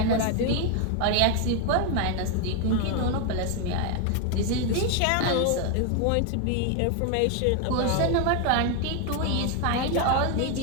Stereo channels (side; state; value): both; different; correlation 0.01